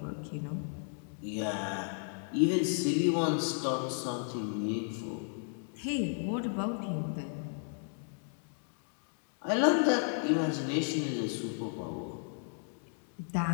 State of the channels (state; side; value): silent; right; 55 dB below the other